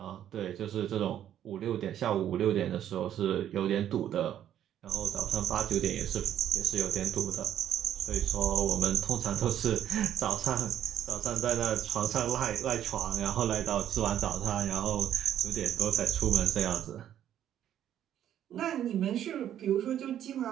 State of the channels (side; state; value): left; quieter; 10.7 dB